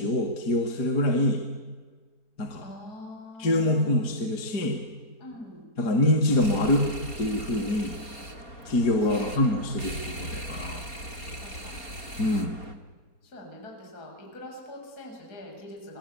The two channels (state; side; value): late; right; 4.3 ms